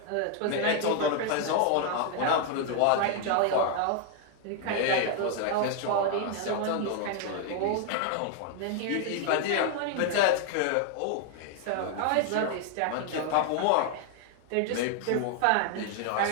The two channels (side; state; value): both; different; correlation 0.00